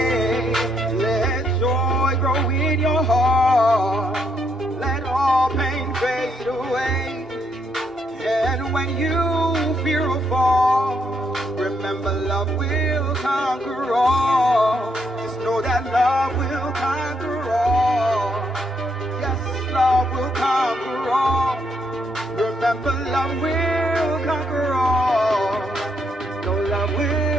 Let joy grow in your heart. Let all pain fade away. And when you fear a fall, remember love will conquer all. Just know that love will conquer all. Love will conquer all. Remember, love will conquer all. No, love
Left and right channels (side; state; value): both; normal; correlation 0.76